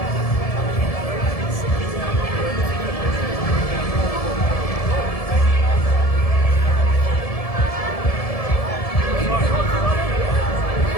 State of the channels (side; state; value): right; late; 1.7 ms